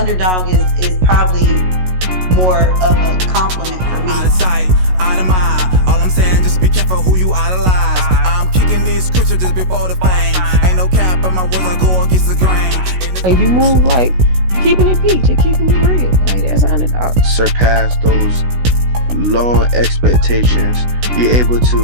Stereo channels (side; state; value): left; late; 16 ms